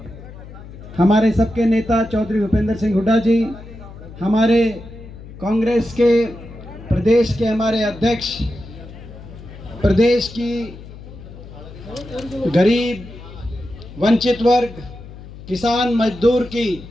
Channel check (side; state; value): left; noise; hum, 16 dB below the sound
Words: हमारे सबके नेता चौधरी भूपेंद्र सिंह हुड्डा जी, हमारे कांग्रेस के प्रदेश के हमारे अध्यक्ष, प्रदेश की गरीब, वंचित वर्ग, किसान, मजदूर की